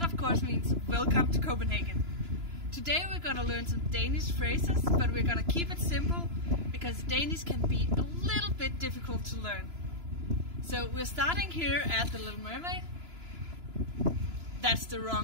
of course means welcome to Copenhagen. Today we're gonna learn some Danish phrases, but we're gonna keep it simple because Danish can be a little bit difficult to learn. So we're starting here at the Little Mermaid. That's the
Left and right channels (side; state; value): left; late; 2.9 ms